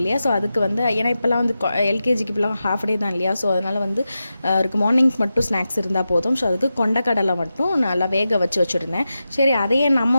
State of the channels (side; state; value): both; inverted; correlation -0.91